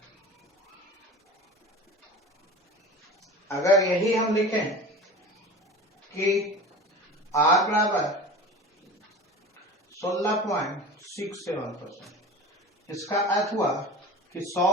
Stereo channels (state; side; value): normal; both; correlation 0.35